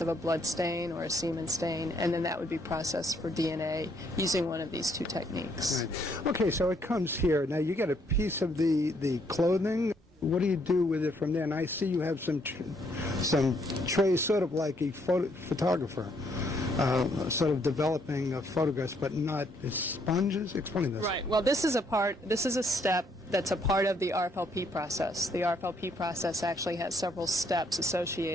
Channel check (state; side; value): normal; both; correlation 0.70